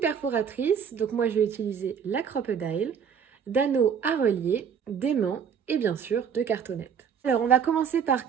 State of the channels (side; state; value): left; quieter; 7.3 dB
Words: perforatrice, donc moi je vais utiliser la Crop-A-Dile, d'anneaux à relier, d'aimants et bien sûr de cartonnettes. Alors on va commencer par